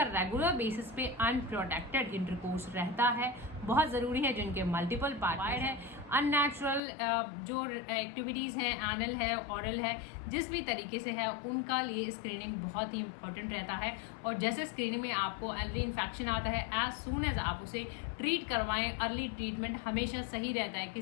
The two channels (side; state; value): right; drops out; at 6.8 s